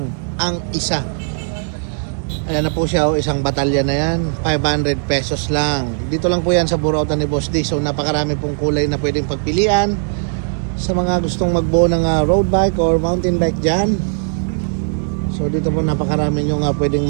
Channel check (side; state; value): left; silent; digital silence